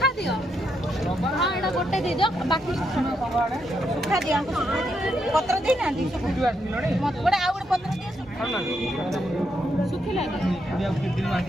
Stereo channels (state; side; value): normal; both; correlation 0.80